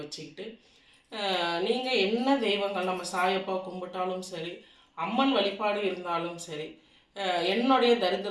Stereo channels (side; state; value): both; identical; correlation 1.00